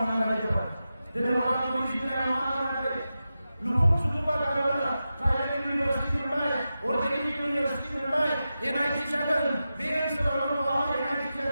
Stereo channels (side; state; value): both; inverted; correlation -0.92